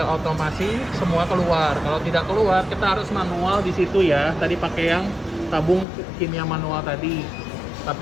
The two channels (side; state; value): right; drops out; at 5.9 s